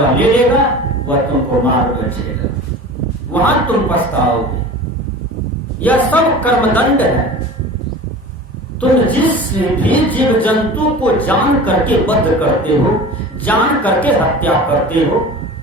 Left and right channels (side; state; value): both; normal; correlation 0.37